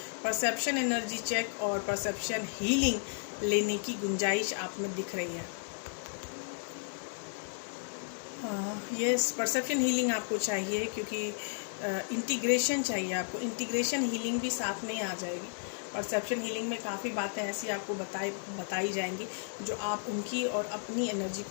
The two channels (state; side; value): silent; right; digital silence